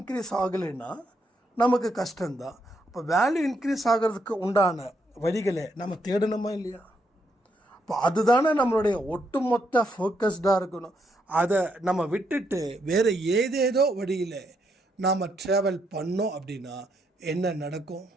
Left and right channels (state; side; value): normal; both; correlation 0.77